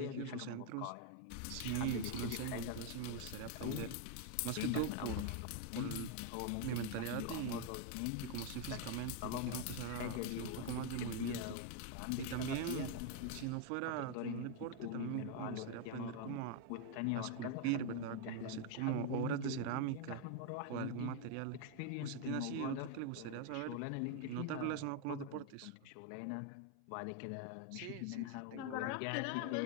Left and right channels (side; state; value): both; different; correlation 0.00